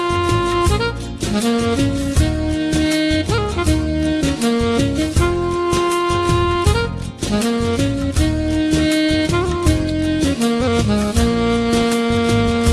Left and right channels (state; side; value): identical; both; correlation 1.00